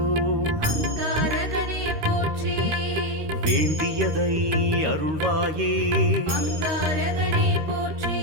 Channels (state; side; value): late; left; 13 ms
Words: அங்காரகனே போற்றி வேண்டியதை அருள்வாயே அங்காரகனே போற்றி